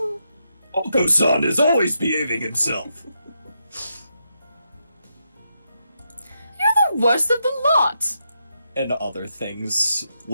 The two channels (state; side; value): inverted; both; correlation -0.83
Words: Oko-san is always behaving himself. You're the worst of the lot! And other things,